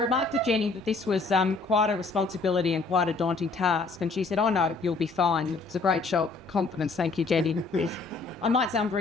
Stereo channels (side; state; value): right; quieter; 3.9 dB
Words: to Jenny that this was quite a responsibility and quite a daunting task, and she said, "Oh no, you'll be fine." It's a great show of confidence. Thank you, Jenny. I might say I'm